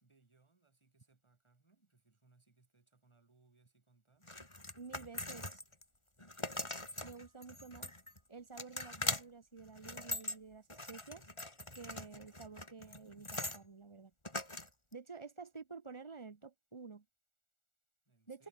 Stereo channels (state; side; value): late; right; 1.4 ms